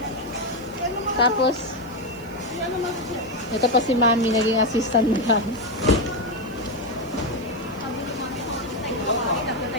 Tapos, ito pa si Mami, naging assistant mo lang.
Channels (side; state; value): right; noise; hiss, 23 dB below the sound